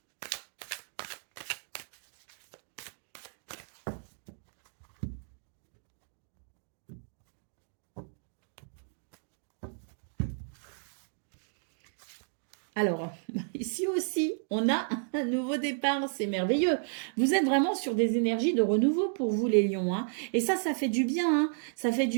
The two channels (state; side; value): silent; left; digital silence